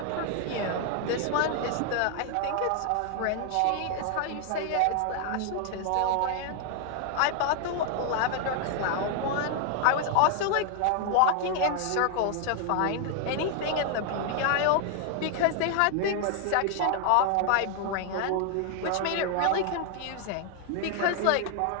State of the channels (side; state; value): both; different; correlation 0.00